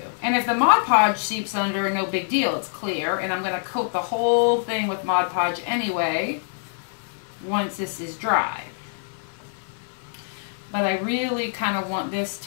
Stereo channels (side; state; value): right; silent; 56 dB below the other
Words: And if the Mod Podge seeps under, no big deal, it's clear. And I'm going to coat the whole thing with Mod Podge anyway once this is dry. But I really kind of want this